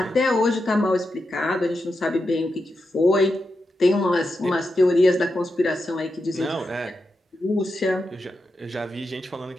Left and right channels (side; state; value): both; normal; correlation 0.88